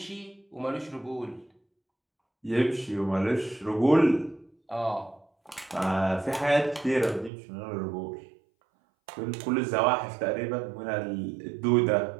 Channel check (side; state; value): left; drops out; at 7.3 s